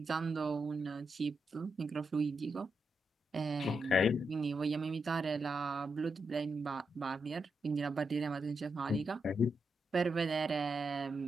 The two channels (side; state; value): both; normal; correlation 0.84